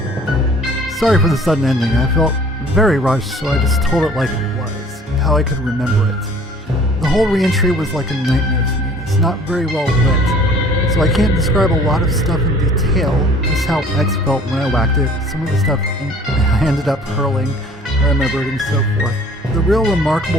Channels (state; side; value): normal; both; correlation 0.52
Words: Sorry for the sudden ending. I felt very rushed, so I just told it like it was, how I could remember it. The whole reentry was like a nightmare to me. It's not very well lit, so I can't describe a lot of stuff in detail, just how X felt when I whacked it, some of the stuff I ended up hurling, I remembered, and so forth. The real